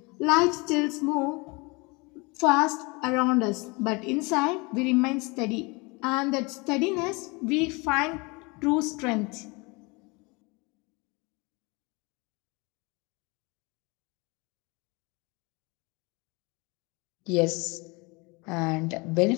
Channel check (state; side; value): quieter; right; 27.4 dB